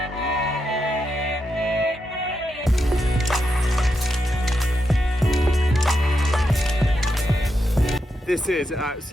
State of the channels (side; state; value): both; normal; correlation 0.85